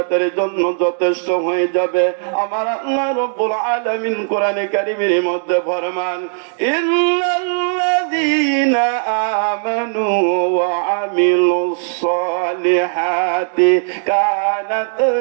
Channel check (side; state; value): left; silent; digital silence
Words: জন্য যথেষ্ট হয়ে যাবে। আমার আল্লাহ রাব্বুল আলামিন কোরআনে কারীমের মধ্যে ফরমান, ইন্নাল্লাযীনা আমানু ওয়া আমিলুস সালিহাতি কানাত